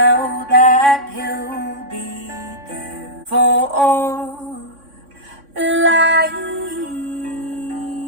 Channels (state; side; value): late; left; 3.6 ms